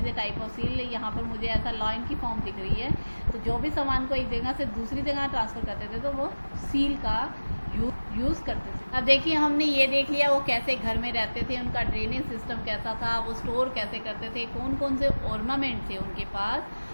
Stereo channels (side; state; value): both; inverted; correlation -1.00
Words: a type of seal. यहाँ पर मुझे ऐसा लाइन की फॉर्म दिख रही है, तो जो भी सामान को एक जगह से दूसरी जगह ट्रांसफ़र करते थे तो वो सील का यूज़ करते थे। अब देखिए हमने ये देख लिया वो कैसे घर में रहते थे, उनका ड्रेनेज सिस्टम कैसा था, वो स्टोर कैसे करते थे, कौन कौन से ऑर्नामेंट थे उनके पास।